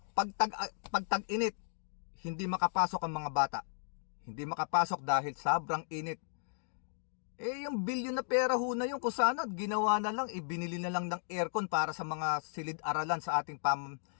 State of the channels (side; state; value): right; silent; digital silence